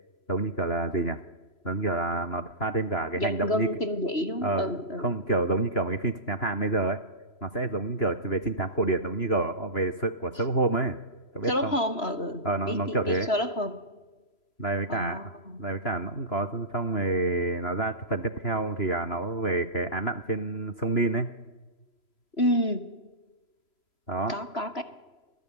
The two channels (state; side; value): late; right; 3.0 ms